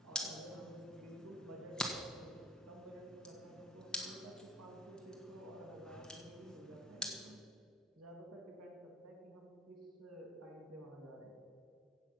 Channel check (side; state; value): both; normal; correlation 0.46